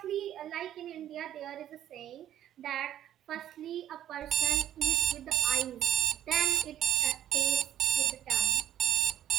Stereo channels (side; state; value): left; quieter; 11.4 dB